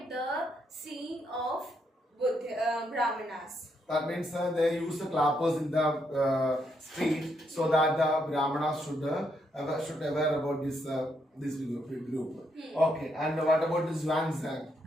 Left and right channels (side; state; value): both; normal; correlation 0.77